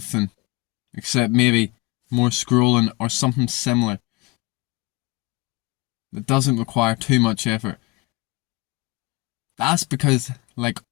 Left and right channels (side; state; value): right; quieter; 23.7 dB